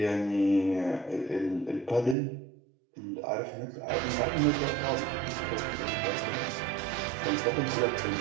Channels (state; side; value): drops out; left; at 2.1 s